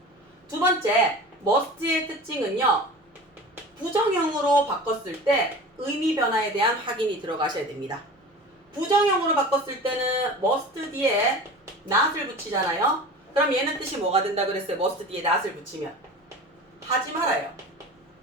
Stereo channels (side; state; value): both; normal; correlation 0.36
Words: 두 번째, must의 특징은요, 부정형으로 바꿨을 때 의미 변화에 대한 확인이 들어가셔야 됩니다. 부정형으로 바꿨을 때는 must 뒤에 not을 붙이잖아요. 그럼 얘는 뜻이 뭐가 된다 그랬어요? must 뒤에 not을 붙이면 하지 말아요.